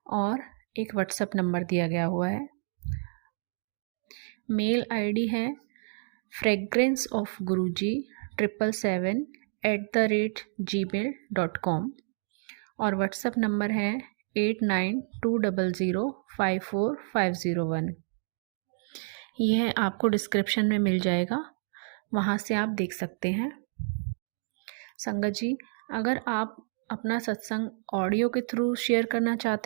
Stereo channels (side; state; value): left; silent; digital silence